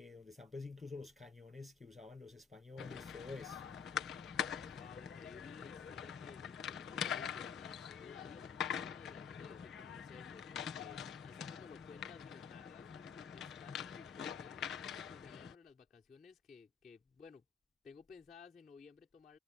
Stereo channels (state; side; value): quieter; right; 7.1 dB